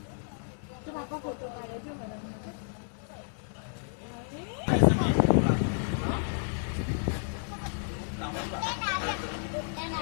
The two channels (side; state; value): right; silent; 57 dB below the other